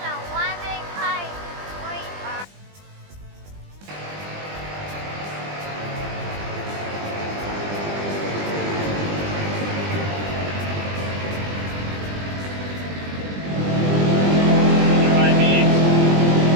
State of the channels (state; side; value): late; left; 20 ms